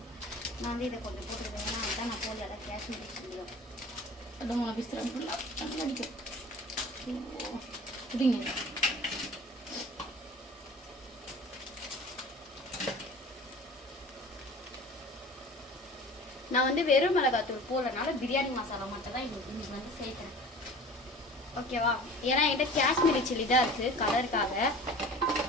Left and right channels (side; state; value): both; normal; correlation 0.42